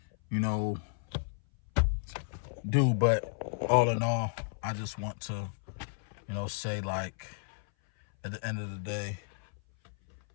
do, but all in all, I just want to, say, like, at the end of the day,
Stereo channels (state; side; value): silent; right; 56 dB below the other